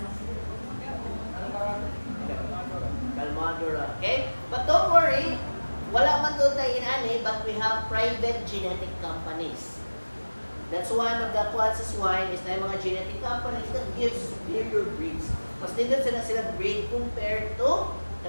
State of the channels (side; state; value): both; inverted; correlation -1.00